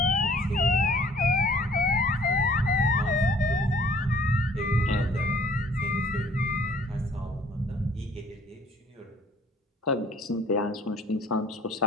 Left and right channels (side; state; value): both; normal; correlation 0.55